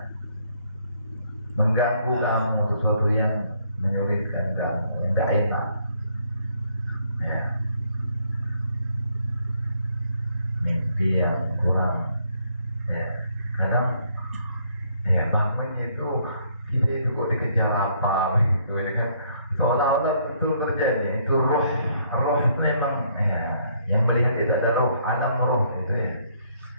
mengganggu kamu, sesuatu yang menyulitkan kamu, yang gak enak ya, mimpi yang kurang ya, kadang ya bangunnya itu kita itu kok dikejar apa gitu ya kan, seolah-olah itu terjadi, itu roh memang ya, yang melihat itu ada roh, alam roh itu ya,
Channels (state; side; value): inverted; both; correlation -0.68